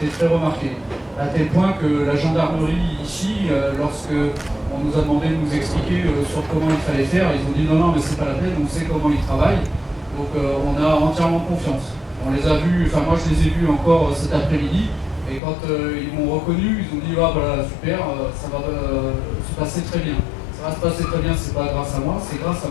très remarquée. À tel point que la gendarmerie ici, lorsque on nous a demandé de nous expliquer sur comment il fallait faire, ils ont dit non mais c'est pas la peine, on sait comment ils travaillent. Donc on a entièrement confiance. On les a vus, enfin moi je les ai vus encore cet après-midi. Et quand ils m'ont reconnu, ils ont dit ah voilà super, ça va se passer très bien. Ça va se passer très bien, c'est pas grâce à moi, c'est grâce à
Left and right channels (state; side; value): drops out; right; at 15.4 s